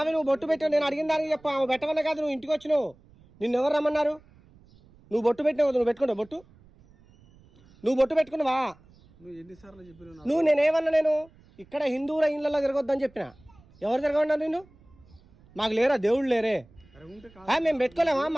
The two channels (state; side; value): noise; right; rumble, 28 dB below the sound